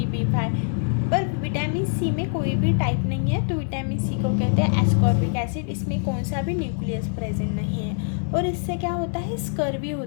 B5, पर विटामिन सी में कोई भी टाइप नहीं है। तो विटामिन सी को कहते हैं एस्कॉर्बिक एसिड। इसमें कौन सा भी न्यूक्लियस प्रेजेंट नहीं है और इससे क्या होता है, स्कर्वी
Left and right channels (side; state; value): right; silent; 59 dB below the other